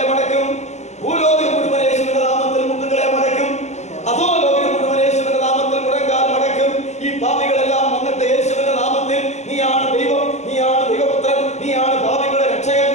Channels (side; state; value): right; late; 0.33 ms